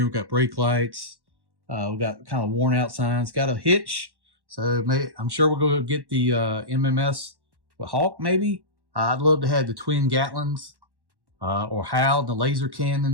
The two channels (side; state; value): left; late; 1.1 ms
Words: We got brake lights. We got kind of worn out signs. Got a hitch. So I'm sure we'll go get the MMS with Hawk maybe. I'd love to have the twin Gatlins or Hal, the laser